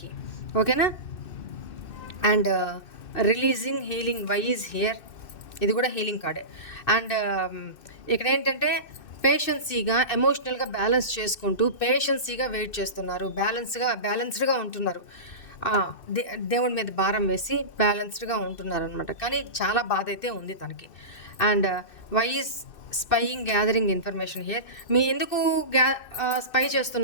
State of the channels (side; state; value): right; late; 2.6 ms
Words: ఓకేనా? And releasing healing. Why is here? ఇది కూడా హీలింగ్ కార్డే. అండ్ ఇక్కడ ఏంటంటే పేషెన్సీగా, ఎమోషనల్గా బ్యాలెన్స్ చేసుకుంటూ పేషెన్సీగా వెయిట్ చేస్తున్నారు, బ్యాలెన్స్డ్గా ఉంటున్నారు. దేవుడి మీద భారం వేసి బ్యాలెన్స్డ్గా ఉంటున్నారు అనమాట. కానీ చాలా బాధ అయితే ఉంది తనకి. And why is spying gathering information here? మీ ఎందుకు స్పై